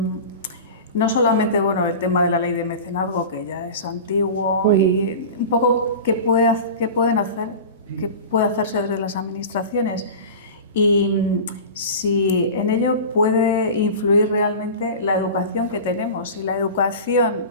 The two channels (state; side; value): inverted; both; correlation -0.33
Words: solamente el tema de la ley de mecenazgo, que ya es antiguo, y un poco qué puede hacerse desde las administraciones, y si en ello puede influir realmente la educación que tenemos, si la